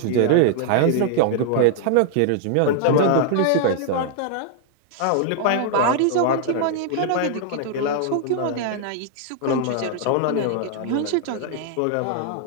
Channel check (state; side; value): different; both; correlation -0.01